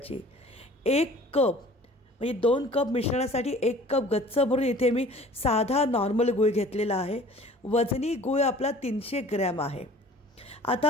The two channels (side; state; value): both; normal; correlation 0.48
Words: 1 कप म्हणजे 2 कप मिश्रणासाठी 1 कप गच्च भरून इथे मी साधा नॉर्मल गूळ घेतलेला आहे। वजनी गूळ आपला 300 ग्रॅम आहे।